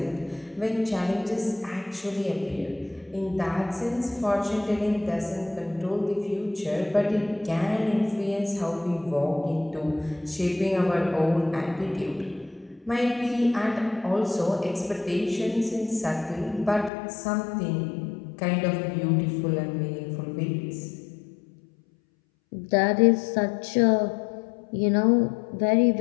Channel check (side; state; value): right; drops out; at 16.9 s